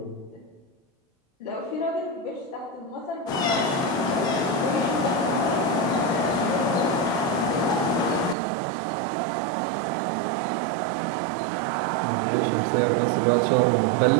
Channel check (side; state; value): left; drops out; at 8.3 s